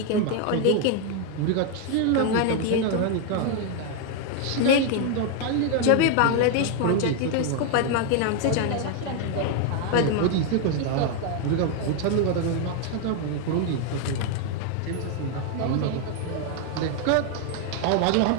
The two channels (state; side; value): different; both; correlation 0.01